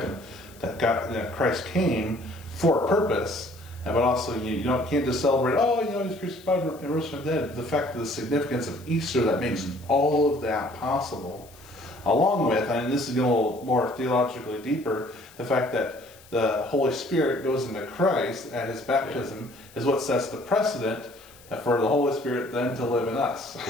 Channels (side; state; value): left; noise; hiss, 24 dB below the sound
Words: that Christ came for a purpose, but also you can't just celebrate, he's crucified and rose from the dead. The fact of the significance of Easter that makes all of that possible, along with, and this is getting a little more theologically deeper, the fact that the Holy Spirit goes into Christ at his baptism is what sets the precedent for the Holy Spirit then to live in us.